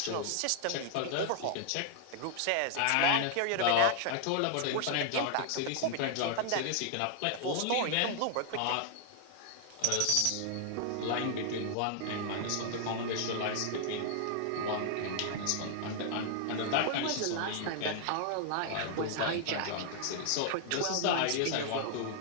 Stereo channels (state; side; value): different; both; correlation -0.01